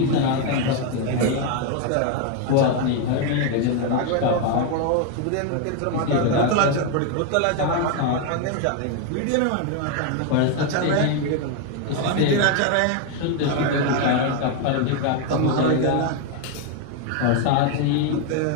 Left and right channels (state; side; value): different; both; correlation 0.01